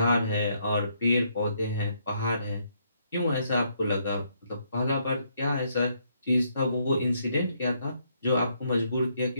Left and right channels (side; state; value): both; inverted; correlation -0.73